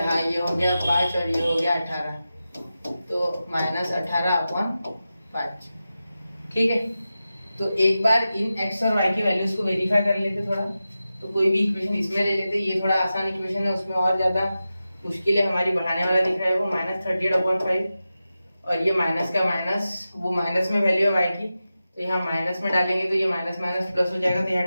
ये हो गया 5 और ये हो गया 18, तो -18/5, ठीक है। तो एक बार इन x और y की वैल्यूज को वेरीफाई कर लेते थोड़ा, तो कोई भी इक्वेशन इसमें ले लेते, ये थोड़ा आसान इक्वेशन है, उसमें और ज्यादा मुश्किल है हमारी, बढ़ाने वाला दिख रहा है वो -38/5, और ये माइनस का माइनस, वो माइनस में वैल्यू है y की, तो यहाँ माइनस में डालेंगे तो ये माइनस माइनस प्लस हो जाएगा, तो यहाँ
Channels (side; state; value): both; inverted; correlation -0.93